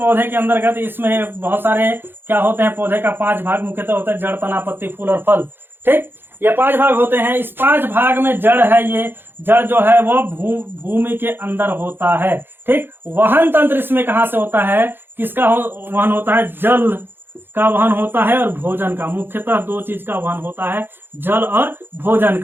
के अंतर्गत इसमें बहुत सारे क्या होते हैं? पौधे का 5 भाग मुख्यतः होता है, जड़, तना, पत्ती, फूल और फल, ठीक। ये 5 भाग होते हैं। इस 5 भाग में जड़ है, ये जड़ जो है वो भूमि के अंदर होता है, ठीक। वहन तंत्र इसमें कहाँ से होता है? किसका वहन होता है? जल का वहन होता है और भोजन का। मुख्यतः 2 चीज का वहन होता है, जल और भोजन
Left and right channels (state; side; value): late; left; 0.10 ms